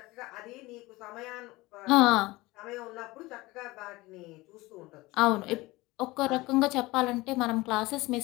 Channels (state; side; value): quieter; right; 20.9 dB